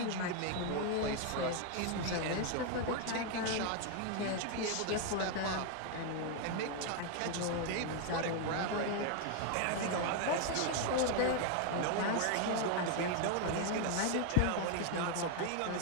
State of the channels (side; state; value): both; different; correlation 0.01